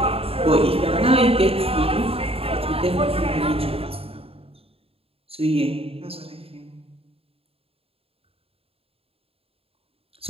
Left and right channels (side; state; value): left; late; 0.28 ms